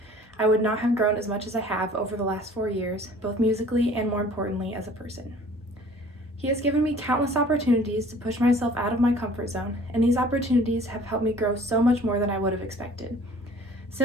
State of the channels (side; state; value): both; normal; correlation 0.50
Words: I would not have grown as much as I have over the last 4 years, both musically and more importantly as a person. He has given me countless opportunities to push myself out of my comfort zone, and these opportunities have helped me grow so much more than I would have expected.